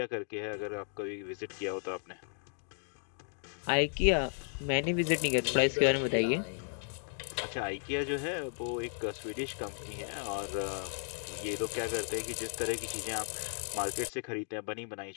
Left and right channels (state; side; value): silent; right; 55 dB below the other